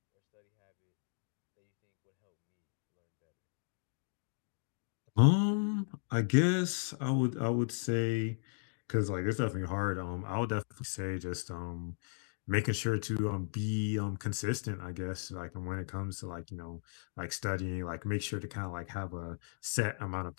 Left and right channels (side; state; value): right; silent; digital silence